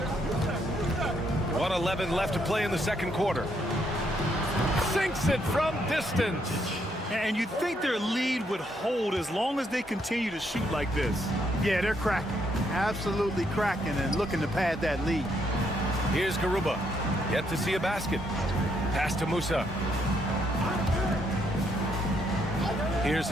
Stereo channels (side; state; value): both; normal; correlation 0.74